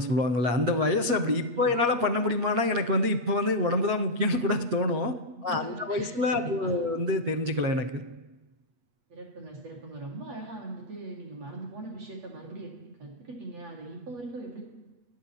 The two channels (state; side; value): late; left; 8.3 ms